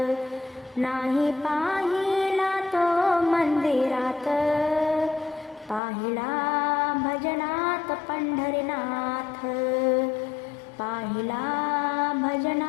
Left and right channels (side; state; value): right; drops out; at 5.8 s